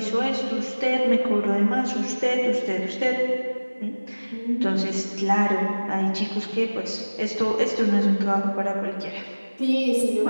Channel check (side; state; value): both; inverted; correlation -1.00